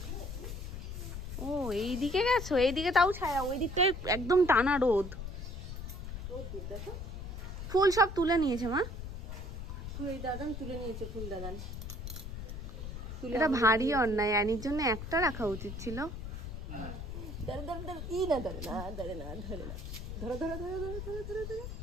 ও এইদিকে গেছো? এইদিকে তাও ছায়া, ওই দিকটায় একদম টানা রোদ। ফুল সব তুলে নিয়েছে মা। ফুল দাদান তুলে নিয়েছে, ফুল দাদান। এটা ভারী অন্যায়, অ্যানির জন্য একটা রাখা উচিত ছিল।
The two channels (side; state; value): left; noise; rumble, 7 dB below the sound